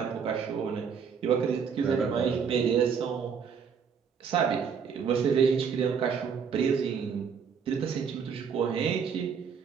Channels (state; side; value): quieter; left; 6.6 dB